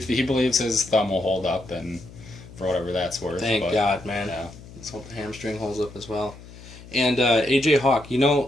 believes his thumb will hold up and. For whatever that's worth. Thank God, man. Yeah. Let's hope the hamstring holds up as well. And A.J. Hawk,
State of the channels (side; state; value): left; noise; hum, 18 dB below the sound